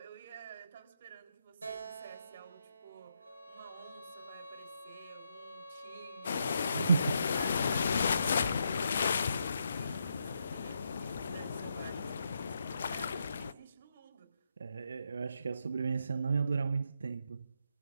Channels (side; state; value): both; inverted; correlation -0.80